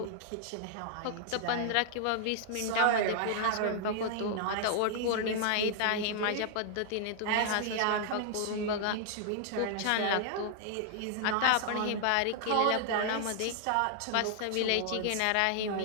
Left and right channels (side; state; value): both; different; correlation -0.01